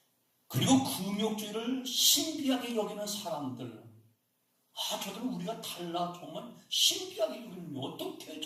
그리고 금욕주의를 신비하게 여기는 사람들, 저들은 우리가 달라 정말 신비하게 여기는, 어떻게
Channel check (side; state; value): both; identical; correlation 1.00